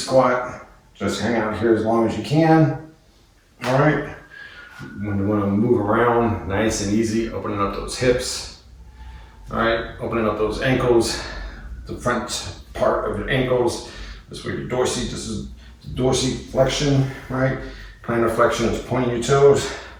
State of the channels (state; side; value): identical; both; correlation 1.00